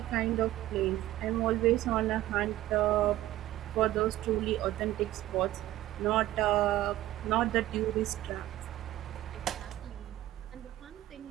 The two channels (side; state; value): left; quieter; 15.1 dB